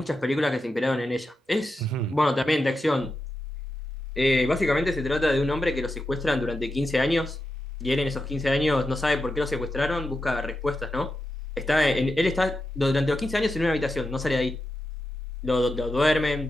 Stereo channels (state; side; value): normal; both; correlation 0.88